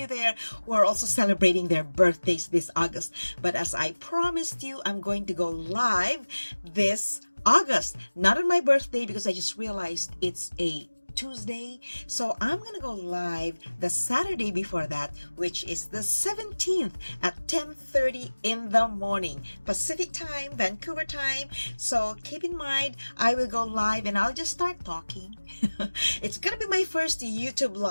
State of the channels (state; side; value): inverted; both; correlation -1.00